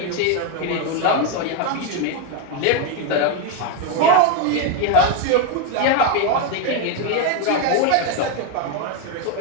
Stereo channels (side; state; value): both; different; correlation 0.01